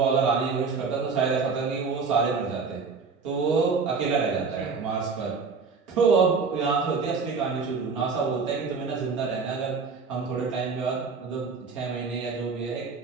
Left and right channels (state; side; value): quieter; left; 4.9 dB